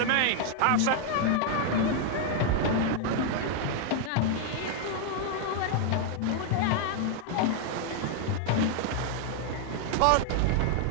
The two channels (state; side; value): different; both; correlation 0.00